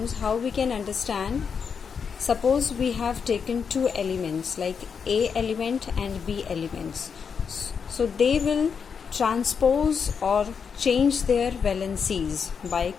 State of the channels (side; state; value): right; quieter; 6.3 dB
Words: how we can understand, suppose we have taken two elements like A element and B elements. So they will transpose or change their valencies by